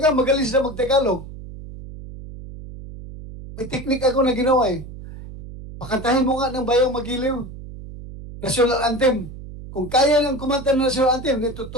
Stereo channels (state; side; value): noise; right; hum, 13 dB below the sound